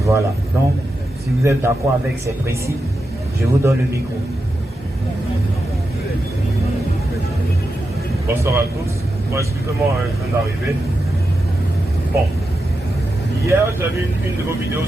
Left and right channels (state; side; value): normal; both; correlation 0.88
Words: Voilà. Donc, si vous êtes d'accord avec ces principes, je vous donne le micro. Bonsoir à tous. Bon, excusez-moi, je viens d'arriver. Bon. Hier, j'ai vu une de vos vidéos